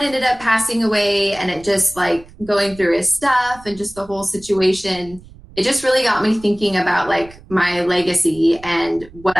ended up passing away, and it just like going through his stuff and just the whole situation, it just really got me thinking about like my legacy and what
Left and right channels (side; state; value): right; noise; rumble, 21 dB below the sound